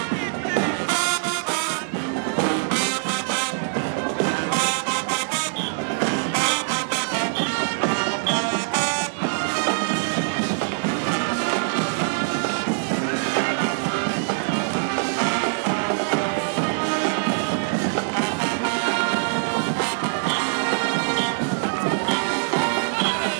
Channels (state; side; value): silent; left; digital silence